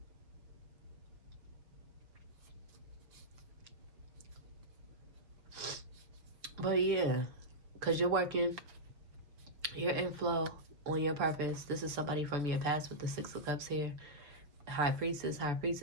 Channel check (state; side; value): late; left; 6.9 ms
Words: But yeah, because you're working, you're in flow on your purpose. This is somebody from your past with the Six of Cups here. High Priestess, High Priest